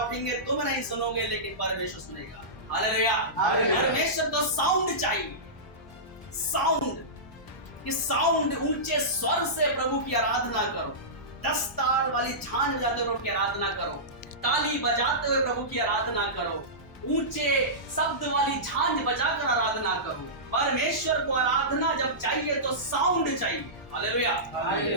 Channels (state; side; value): normal; both; correlation -0.18